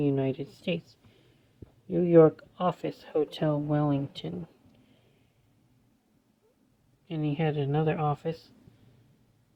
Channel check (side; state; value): both; identical; correlation 1.00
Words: States, New York office, Hotel Wellington. And he had another office